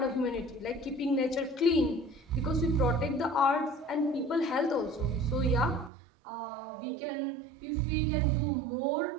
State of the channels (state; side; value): drops out; left; at 5.9 s